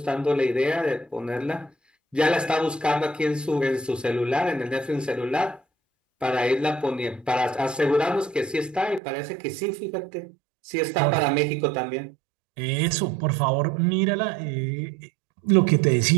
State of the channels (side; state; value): left; drops out; at 9.0 s